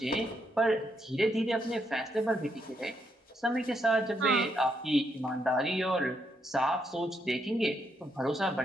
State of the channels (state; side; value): normal; both; correlation 0.78